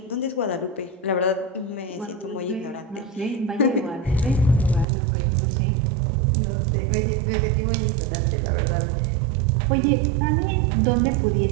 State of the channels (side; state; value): left; drops out; at 4.9 s